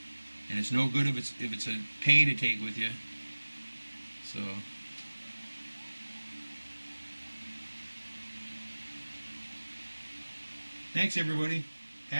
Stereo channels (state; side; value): inverted; both; correlation -1.00